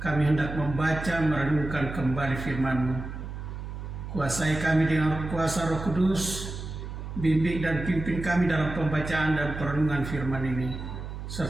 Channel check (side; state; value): right; noise; hum, 8 dB below the sound